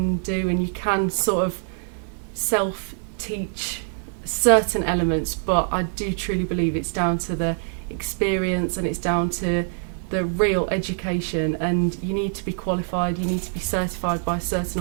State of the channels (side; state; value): left; silent; 56 dB below the other